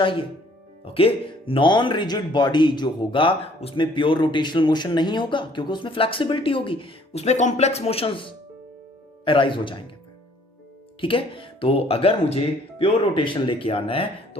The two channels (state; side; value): normal; both; correlation 0.59